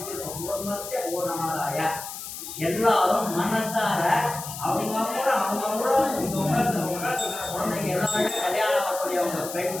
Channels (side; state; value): left; noise; hiss, 9 dB below the sound